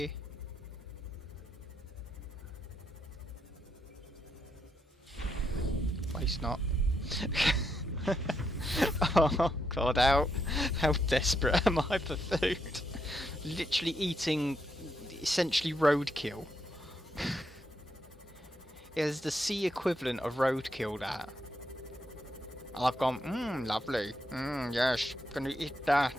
Waste not. Oh god, how desperate am I for food? Literally eating essentially roadkill. It is the sea equivalent of roadkill, that. I've gone, lovely. Yes, gonna eat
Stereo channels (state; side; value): normal; both; correlation 0.79